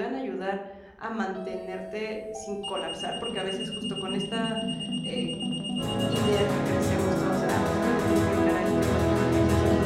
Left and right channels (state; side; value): identical; both; correlation 1.00